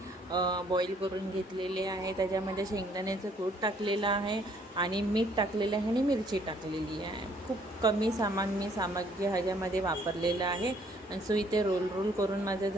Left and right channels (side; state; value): both; normal; correlation 0.63